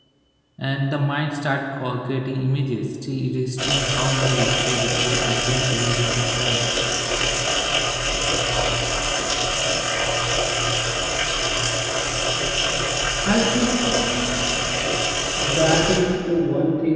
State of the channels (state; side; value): identical; both; correlation 1.00